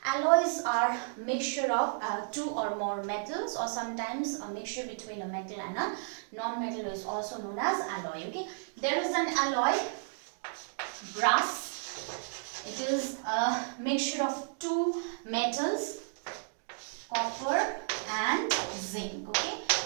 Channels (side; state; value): left; silent; digital silence